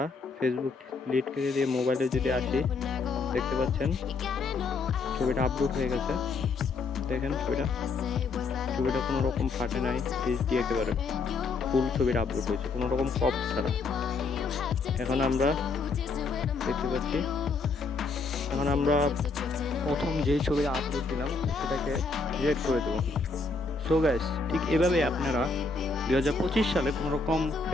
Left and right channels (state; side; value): quieter; right; 4.2 dB